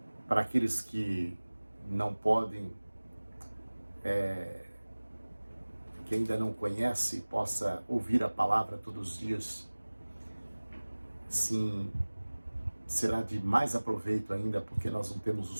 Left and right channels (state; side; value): inverted; both; correlation -1.00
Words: para aqueles que não podem, que ainda não conhece, possa ouvir a palavra todos os dias. Sim, será de mais aproveito ainda, porque nós não temos